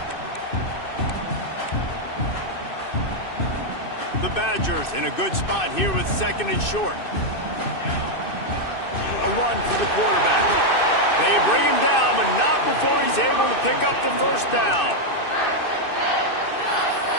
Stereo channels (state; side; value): late; right; 2.6 ms